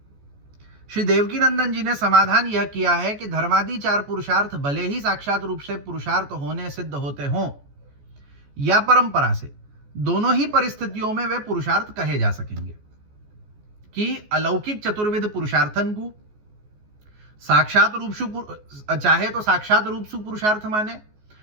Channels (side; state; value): left; late; 14 ms